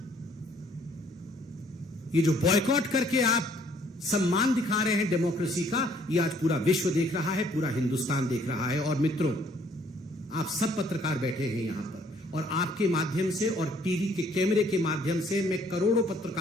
ये जो बॉयकॉट करके आप सम्मान दिखा रहे हैं डेमोक्रेसी का, ये आज पूरा विश्व देख रहा है, पूरा हिंदुस्तान देख रहा है। और मित्रों, आप सब पत्रकार बैठे हैं यहां पर, और आपके माध्यम से और टीवी के कैमरे के माध्यम से मैं करोड़ों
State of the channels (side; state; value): both; normal; correlation 0.62